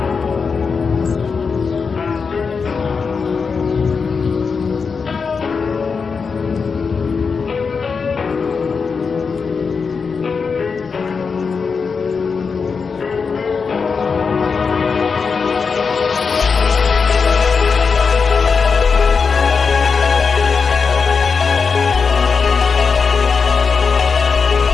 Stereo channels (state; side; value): quieter; right; 5.3 dB